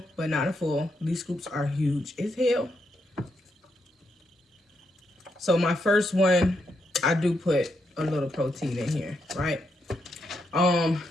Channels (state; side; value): normal; both; correlation 0.80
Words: but not a full. These scoops are huge as hell. So my first one, I do put a little protein in here, right?